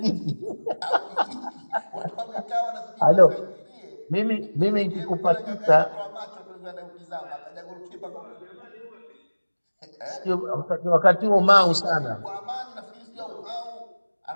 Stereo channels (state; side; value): inverted; both; correlation -1.00